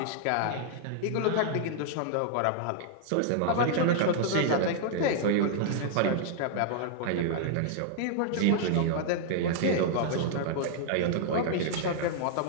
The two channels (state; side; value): different; both; correlation -0.01